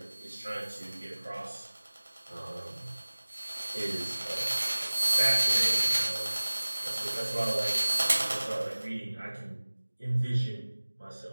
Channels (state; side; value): inverted; both; correlation -1.00